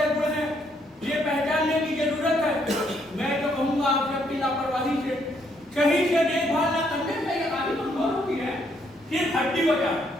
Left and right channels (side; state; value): both; normal; correlation 0.71